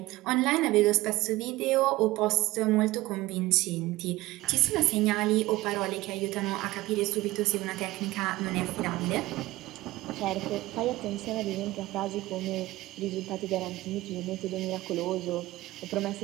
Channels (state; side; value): quieter; left; 18.5 dB